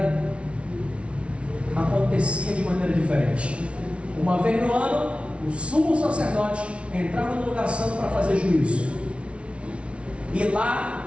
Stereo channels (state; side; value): late; left; 0.060 ms